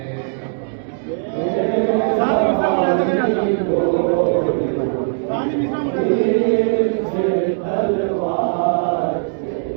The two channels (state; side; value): silent; left; digital silence